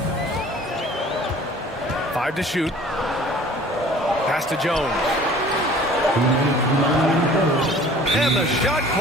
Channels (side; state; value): both; normal; correlation 0.49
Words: 5 to shoot. Pass to Jones. And the shot